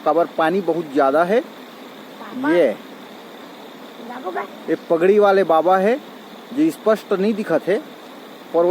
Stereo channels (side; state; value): both; identical; correlation 1.00